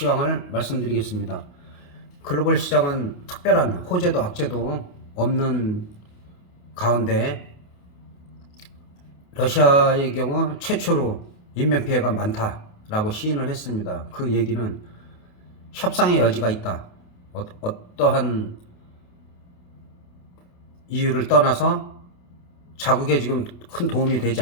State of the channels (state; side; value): late; right; 28 ms